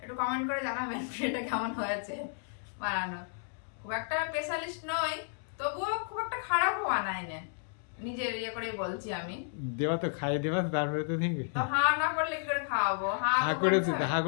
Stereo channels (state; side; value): silent; right; digital silence